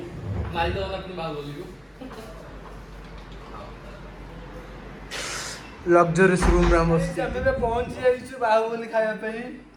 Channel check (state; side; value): identical; both; correlation 1.00